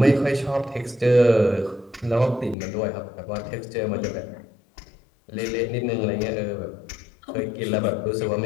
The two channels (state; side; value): drops out; right; at 2.6 s